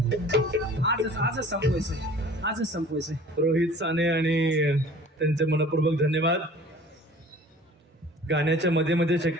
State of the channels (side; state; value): both; normal; correlation 0.47